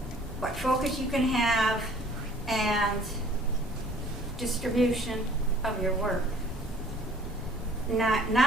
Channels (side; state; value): both; normal; correlation 0.54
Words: focus you can have and distribution of your work.